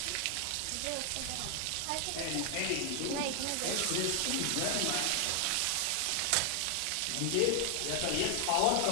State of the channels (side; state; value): both; different; correlation 0.00